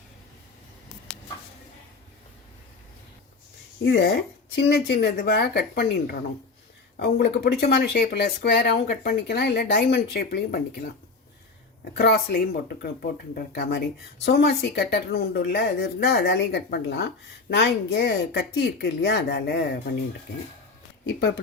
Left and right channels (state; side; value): quieter; right; 4.0 dB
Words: இதை சின்ன சின்னதுவாக கட் பண்ணின்றணும். உங்களுக்கு பிடிச்சமான ஷேப்பில் ஸ்கொயராகவும் கட் பண்ணிக்கலாம், இல்லை டைமண்ட் ஷேப்லேயும் பண்ணிக்கலாம். கிராஸ்லேயும் போட்டுருக்க மாதிரி சோமாசி கட்டர்னு உண்டு இல்லை, அது இருந்தால் அதாலேயும் கட் பண்ணலாம். நான் இங்கே கத்தி இருக்குது இல்லையா, அதால் பண்ணிட்டுருக்கேன். இப்போ